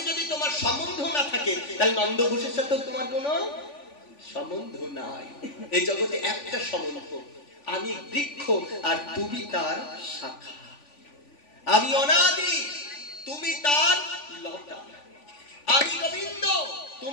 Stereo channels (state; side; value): late; right; 3.5 ms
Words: যদি তোমার সম্বন্ধ না থাকে তাহলে নন্দঘোষের সাথে তোমার কোনো সম্বন্ধ নাই। এই জগতে একটা সম্বন্ধ, আমি বৃক্ষ আর তুমি তার শাখা, আমি অনাদি তুমি তার লতা, আমি গোবিন্দ